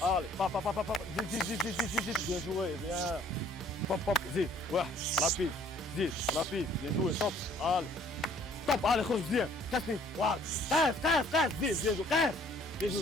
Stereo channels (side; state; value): both; normal; correlation 0.58